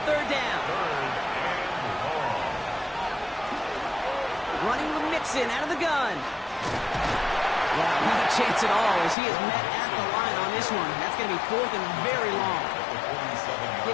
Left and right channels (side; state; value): right; drops out; at 9.2 s